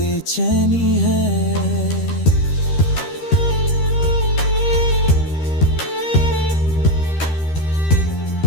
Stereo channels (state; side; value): late; right; 13 ms